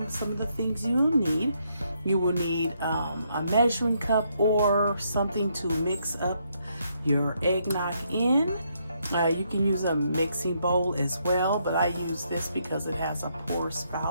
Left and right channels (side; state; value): both; inverted; correlation -0.75